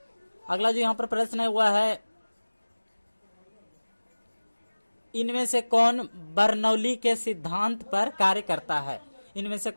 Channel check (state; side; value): inverted; both; correlation -1.00